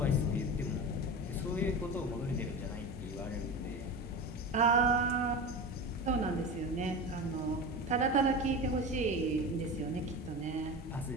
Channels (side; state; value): both; normal; correlation 0.27